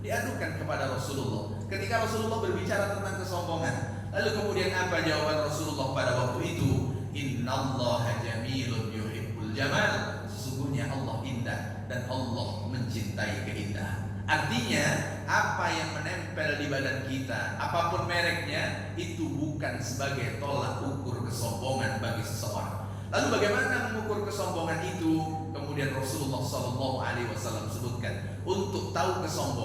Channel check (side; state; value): both; identical; correlation 1.00